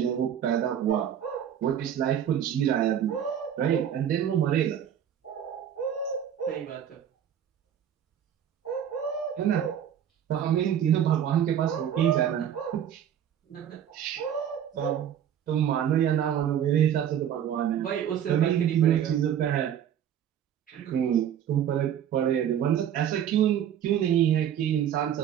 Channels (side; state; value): left; quieter; 9.6 dB